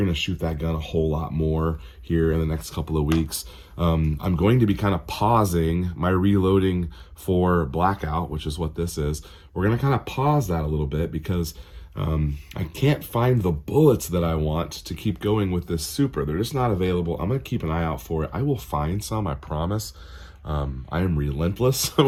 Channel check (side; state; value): both; identical; correlation 1.00